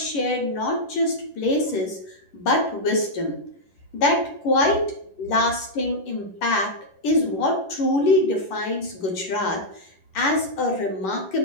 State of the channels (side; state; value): right; late; 11 ms